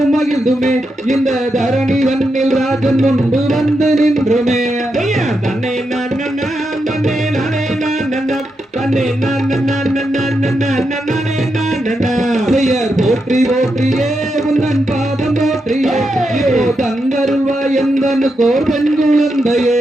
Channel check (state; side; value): normal; both; correlation 0.85